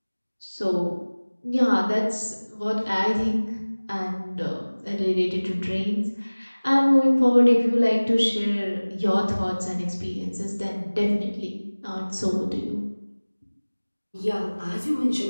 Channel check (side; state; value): both; inverted; correlation -1.00